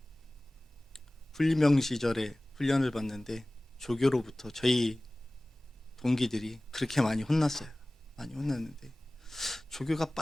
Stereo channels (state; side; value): normal; both; correlation 0.98